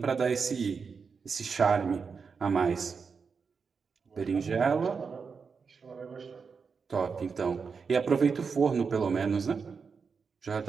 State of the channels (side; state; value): left; quieter; 5.5 dB